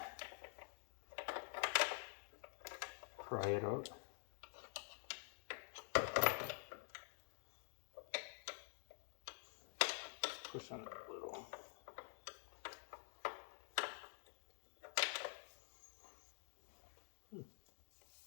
pry it out. Push on it a little.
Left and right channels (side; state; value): right; silent; digital silence